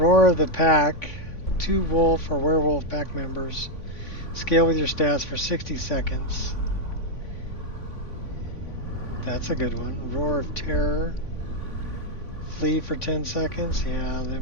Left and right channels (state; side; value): late; right; 3.5 ms